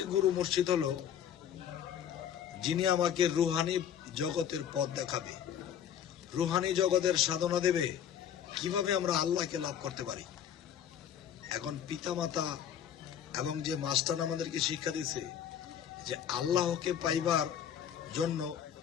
গুরু মুর্শিদ হলো যিনি আমাকে রুহানি জগতের পথ দেখাবে, রুহানি জগতের সাধনা দেবে, কিভাবে আমরা আল্লাহকে লাভ করতে পারি। এখন পিতামাতা এবং যে মাস্টার আমাদেরকে শিক্ষা দিয়েছে যে আল্লাহকে পাইবার জন্য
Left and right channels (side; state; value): right; quieter; 9.2 dB